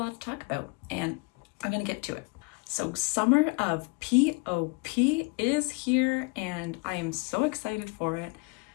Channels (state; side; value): quieter; right; 29.5 dB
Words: to talk about and I'm gonna get to it. So summer of POP is here and I am so excited for it.